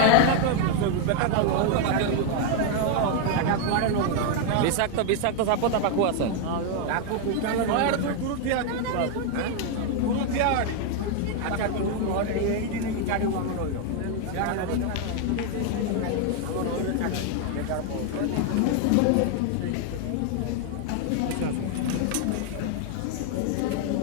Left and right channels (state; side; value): different; both; correlation 0.01